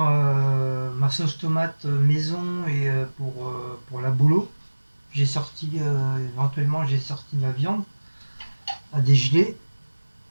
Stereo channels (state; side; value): inverted; both; correlation -1.00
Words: ma sauce tomate maison et pour la boulot. J'ai sorti, éventuellement, j'ai sorti ma viande à dégeler.